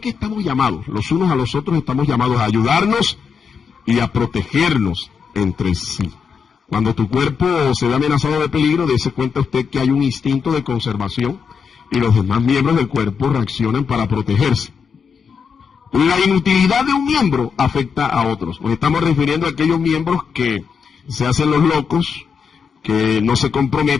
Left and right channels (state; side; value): quieter; right; 6.2 dB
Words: estamos llamados, los unos a los otros estamos llamados a ayudarnos y a protegernos entre sí. Cuando tu cuerpo se ve amenazado de peligro, dése cuenta usted que hay un instinto de conservación y los demás miembros del cuerpo reaccionan para protegerse. La inutilidad de un miembro afecta a otros. Nos estamos refiriendo a aquellos miembros que se hacen los locos, que no se